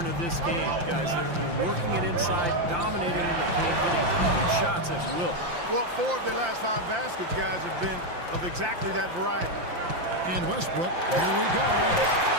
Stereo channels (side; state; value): left; late; 5.8 ms